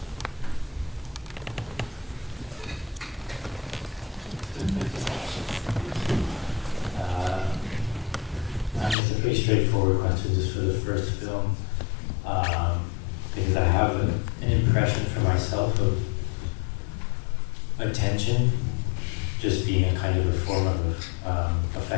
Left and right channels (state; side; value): drops out; right; at 9.0 s